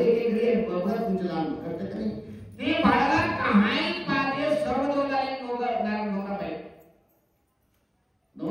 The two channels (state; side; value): identical; both; correlation 1.00